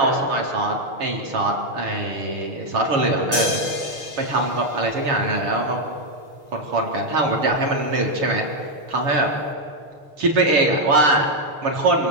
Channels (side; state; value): left; late; 6.3 ms